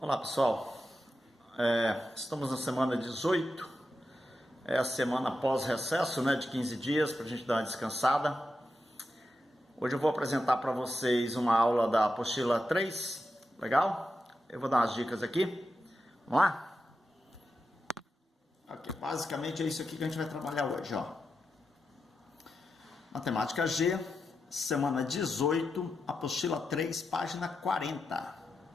Olá pessoal, estamos na semana 18, é a semana pós-recesso, né, de 15 dias para a gente dar uma descansada. Hoje eu vou apresentar para vocês uma aula da apostila 3, legal? Eu vou dar umas dicas aqui, vamos lá? Ok, basicamente é isso aqui que a gente vai trabalhar hoje, ó. Matemática G, semana 18, apostila 3, página 40.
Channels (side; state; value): both; normal; correlation 0.88